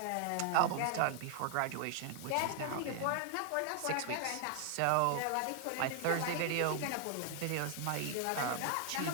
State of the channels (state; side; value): different; both; correlation 0.00